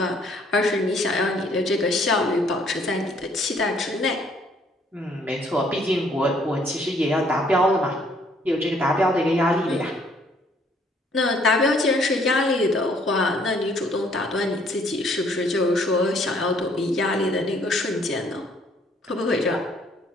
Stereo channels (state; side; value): normal; both; correlation 0.63